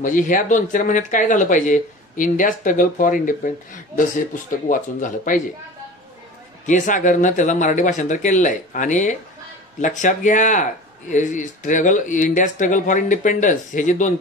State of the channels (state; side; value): normal; both; correlation 0.37